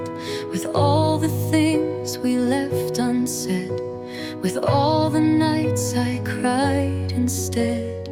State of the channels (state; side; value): identical; both; correlation 1.00